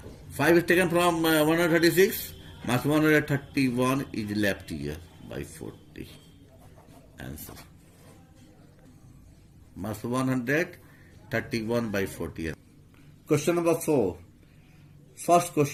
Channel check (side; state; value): both; identical; correlation 1.00